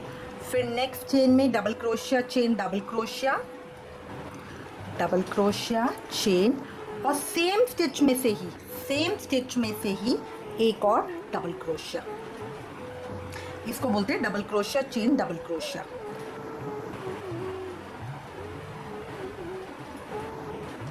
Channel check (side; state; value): both; identical; correlation 1.00